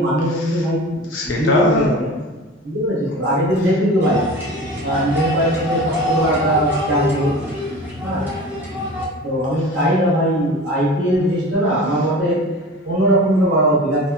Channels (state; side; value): normal; both; correlation 0.36